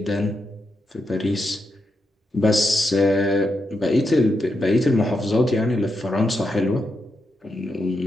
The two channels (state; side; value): normal; both; correlation 0.85